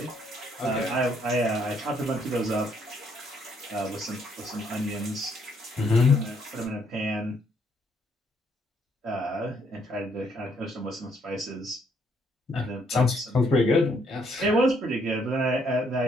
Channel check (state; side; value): normal; both; correlation 0.70